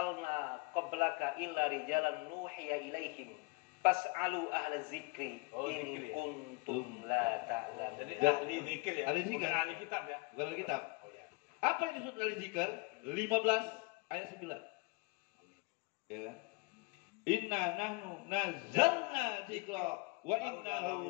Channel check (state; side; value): quieter; right; 27.4 dB